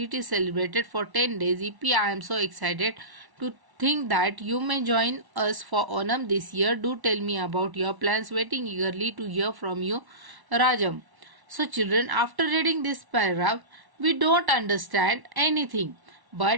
is celebrated for 10 days. Yippee, I am so excited to think that you may join us for Onam this year. Do tell me about your plans. Waiting eagerly to hear from you, Rajam. So children, after reading this paragraph, we don't understand anything.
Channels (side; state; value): left; late; 1.1 ms